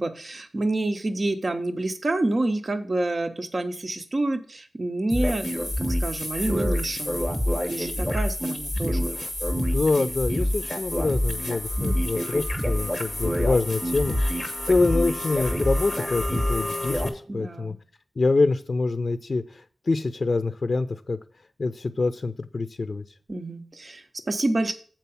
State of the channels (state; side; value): normal; both; correlation 0.96